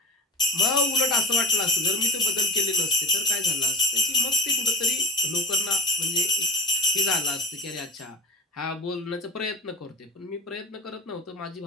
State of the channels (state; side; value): normal; both; correlation 0.34